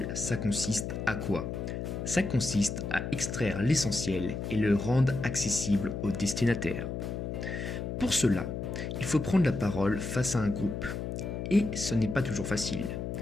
ça consiste à quoi? Ça consiste à extraire l'essentiel et le rendre accessible au destinataire. Pour cela, il faut prendre la parole face à un groupe. Et ce n'est pas toujours facile.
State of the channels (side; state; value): left; noise; hum, 4 dB below the sound